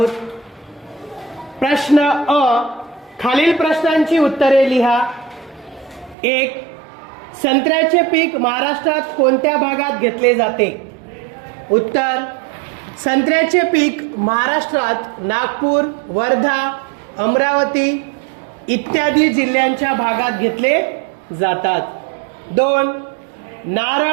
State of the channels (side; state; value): left; drops out; at 6.2 s